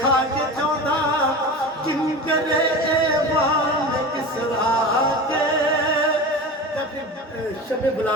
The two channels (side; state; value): both; normal; correlation 0.30